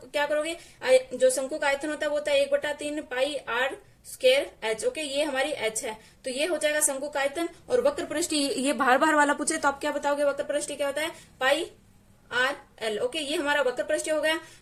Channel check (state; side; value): identical; both; correlation 1.00